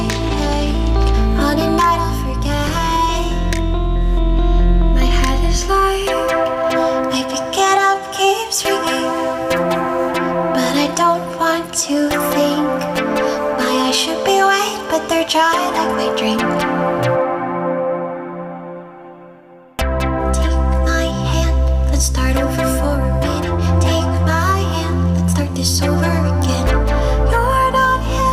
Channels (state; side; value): identical; both; correlation 1.00